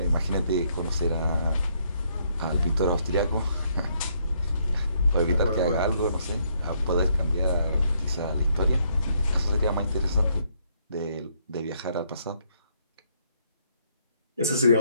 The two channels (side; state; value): both; inverted; correlation -0.71